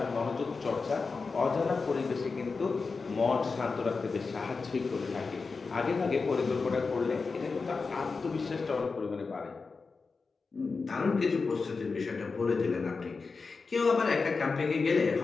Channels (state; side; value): quieter; right; 4.5 dB